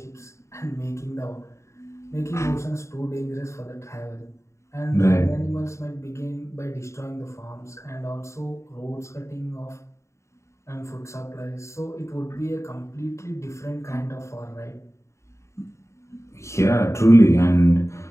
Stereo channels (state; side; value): late; right; 0.14 ms